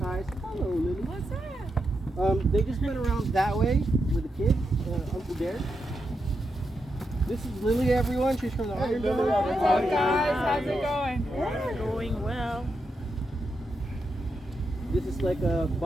Hello, Lily. What's that? They just went around that way with the kids, Uncle Derek. This is Lily, everyone. She's from the Iron Dome. Hey guys, how's it going? Yeah, going well. This is like a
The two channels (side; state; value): both; normal; correlation 0.85